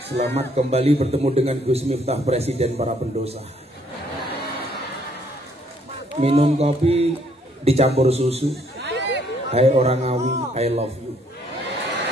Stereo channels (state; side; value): normal; both; correlation 0.67